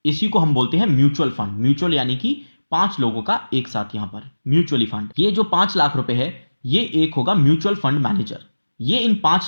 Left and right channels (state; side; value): inverted; both; correlation -1.00